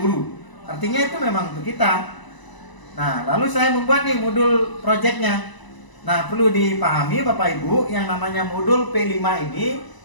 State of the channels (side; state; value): right; late; 1.0 ms